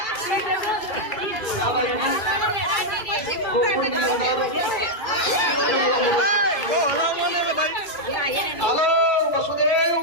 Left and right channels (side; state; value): right; late; 2.5 ms